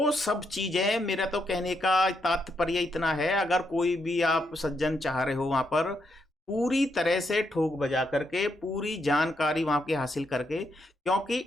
सब चीजें, मेरा तो कहने का तात्पर्य इतना है, अगर कोई भी आप सज्जन चाह रहे हो वहां पर पूरी तरह से ठोक बजा करके पूरी जानकारी वहां की हासिल करके, क्योंकि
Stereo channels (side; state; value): both; normal; correlation 0.79